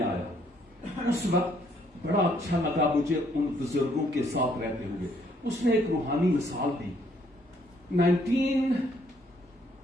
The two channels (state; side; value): normal; both; correlation 0.67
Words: آیا اس وقت بڑا اچھا لگا مجھے ان بزرگوں کے ساتھ رہتے ہوئے. اس نے ایک روحانی مثال دی.